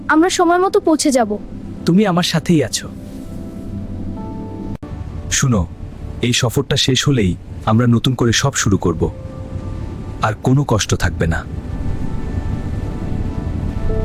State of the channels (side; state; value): both; identical; correlation 1.00